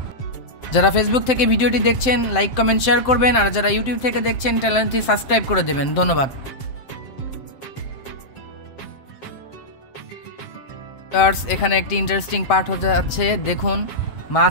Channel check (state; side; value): late; right; 7.7 ms